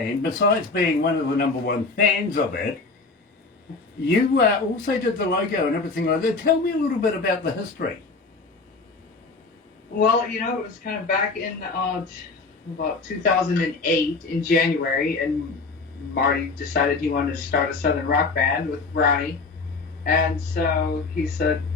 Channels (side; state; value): right; quieter; 4.0 dB